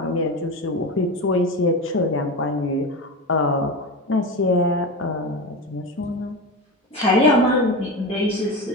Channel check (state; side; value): normal; both; correlation 0.22